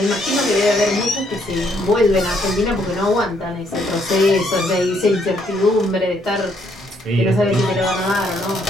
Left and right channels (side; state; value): both; normal; correlation 0.70